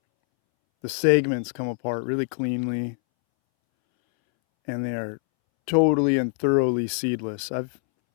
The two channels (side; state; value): right; silent; 62 dB below the other